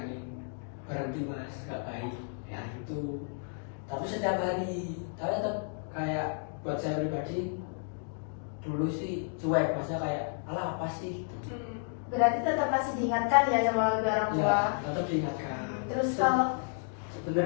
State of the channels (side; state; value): right; silent; 57 dB below the other